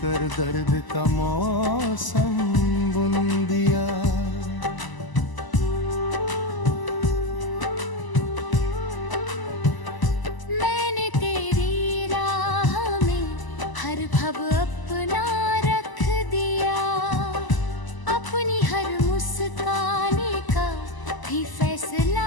दर्द का मौसम बुन दिया। मैंने तेरी राह में हर भव अपना रख दिया। अपनी हर मुस्काने का भी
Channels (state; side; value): late; right; 1.0 ms